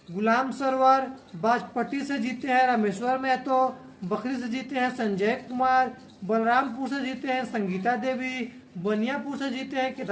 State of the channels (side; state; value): both; identical; correlation 1.00